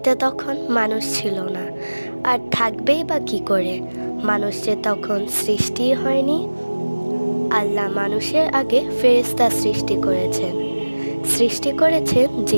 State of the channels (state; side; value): inverted; both; correlation -1.00